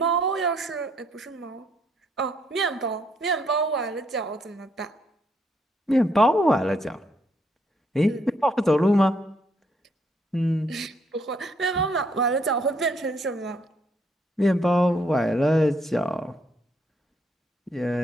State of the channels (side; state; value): both; normal; correlation 0.71